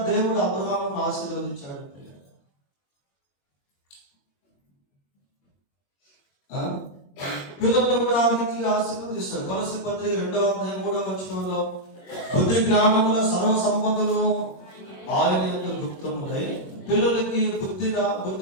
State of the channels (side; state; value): right; late; 21 ms